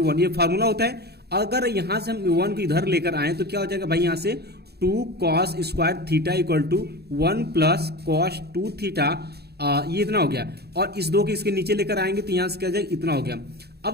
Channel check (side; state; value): left; late; 0.47 ms